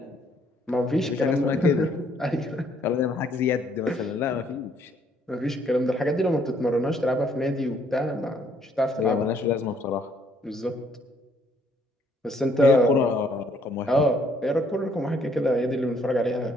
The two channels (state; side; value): normal; both; correlation 0.66